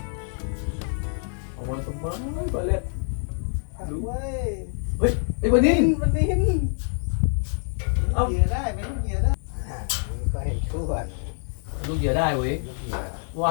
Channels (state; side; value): silent; right; digital silence